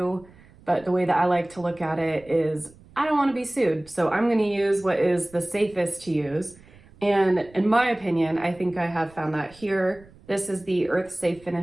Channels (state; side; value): noise; right; rumble, 25 dB below the sound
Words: but the way that I like to look at it is I don't want to be sued, so I'm going to use what is the safest to use. And in my opinion, I think I have found that here. This is the Earth Safe